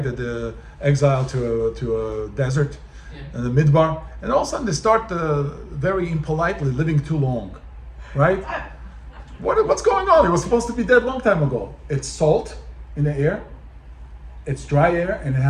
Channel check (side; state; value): both; identical; correlation 1.00